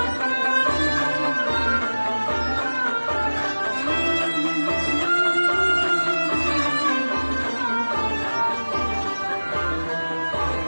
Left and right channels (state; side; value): inverted; both; correlation -1.00